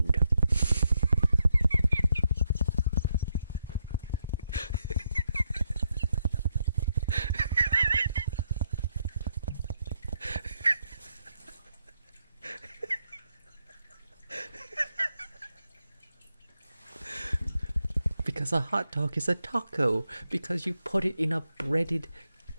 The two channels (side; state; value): both; inverted; correlation -0.79